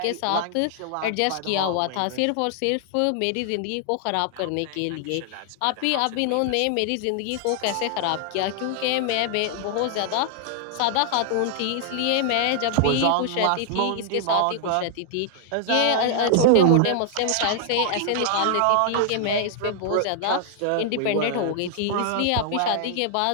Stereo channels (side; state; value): both; different; correlation 0.00